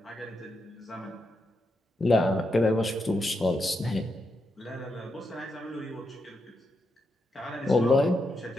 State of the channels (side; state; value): both; normal; correlation 0.84